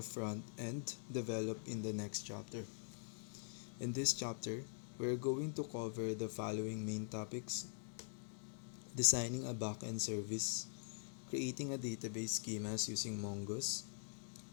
front end developed in the next chapter. In this chapter, we are going to cover the following main topics: designing a backend service, creating a database schemas using Mongoose,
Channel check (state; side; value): silent; right; digital silence